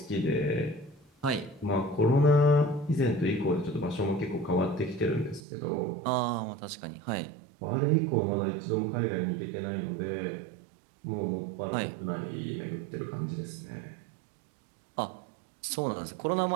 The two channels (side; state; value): left; drops out; at 5.4 s